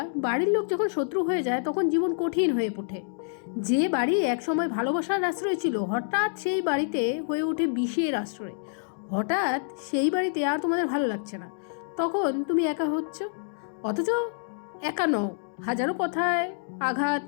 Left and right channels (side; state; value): right; silent; digital silence